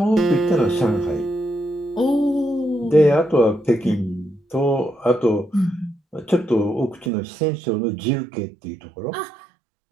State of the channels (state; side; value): drops out; left; at 7.1 s